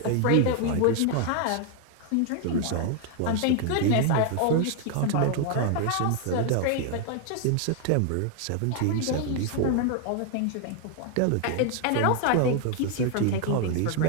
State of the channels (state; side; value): different; both; correlation 0.00